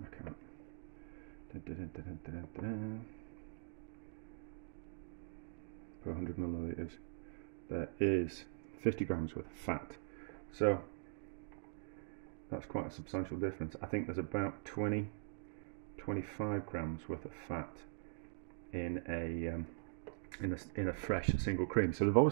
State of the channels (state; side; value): silent; left; digital silence